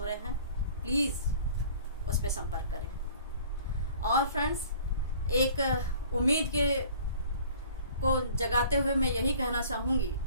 रहे हैं, प्लीज उस पर संपर्क करें। और फ्रेंड्स, एक उम्मीद को जगाते हुए मैं यही कहना चाहूंगी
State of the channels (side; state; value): both; inverted; correlation -0.50